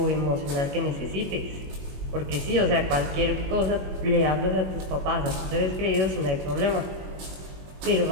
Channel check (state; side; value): late; left; 21 ms